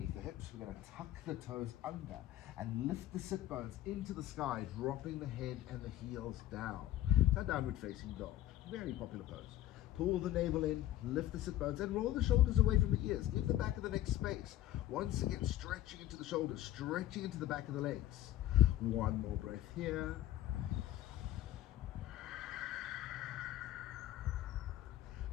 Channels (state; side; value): quieter; right; 13.4 dB